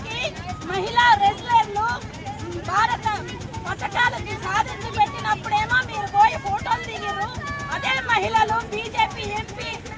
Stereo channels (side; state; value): both; identical; correlation 1.00